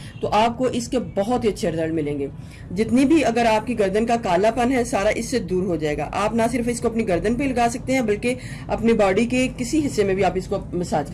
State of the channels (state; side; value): identical; both; correlation 1.00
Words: तो आपको इसके बहुत ही अच्छे रिजल्ट मिलेंगे। जितनी भी अगर आपकी गर्दन का कालापन है सारा इससे दूर हो जाएगा। आप ना सिर्फ इसको अपनी गर्दन पे लगा सकते हैं बल्कि अपनी बॉडी के किसी हिस्से में भी आप इसको मसाज